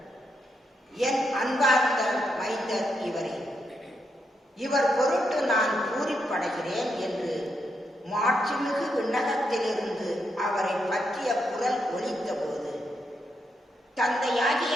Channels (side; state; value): both; normal; correlation 0.81